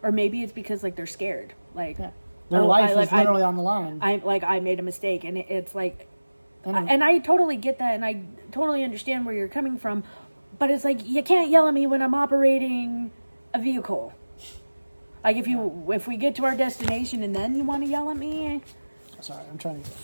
or maybe it's because like they're scared. Like, yeah. Their life is literally on the line. I made a mistake, and it's like, and I totally get that, and I totally understand where you're coming from, but it's like you can't yell at me when I'm operating a vehicle. Like if we get to our destination and then you want to yell at me. Sorry, I'm trying to get the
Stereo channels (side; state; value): both; inverted; correlation -1.00